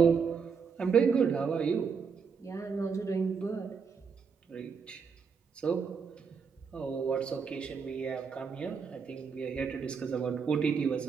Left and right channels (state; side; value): quieter; left; 5.9 dB